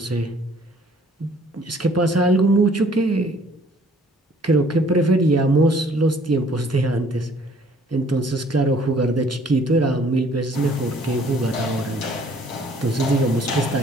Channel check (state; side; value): normal; both; correlation 0.58